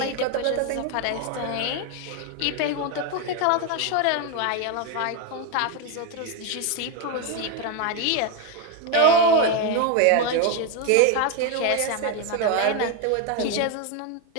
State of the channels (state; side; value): different; both; correlation 0.02